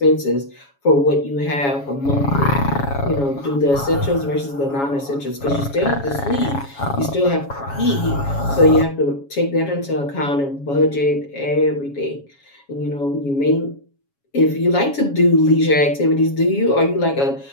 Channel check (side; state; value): right; late; 7.2 ms